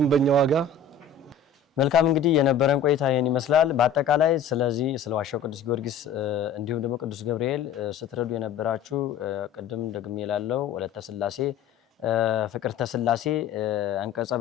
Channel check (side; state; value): right; quieter; 6.1 dB